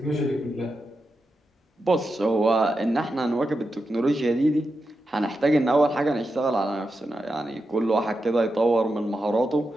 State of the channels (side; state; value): both; normal; correlation 0.88